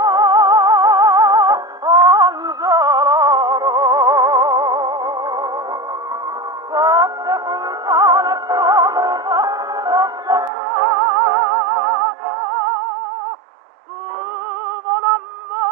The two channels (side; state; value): left; drops out; at 10.5 s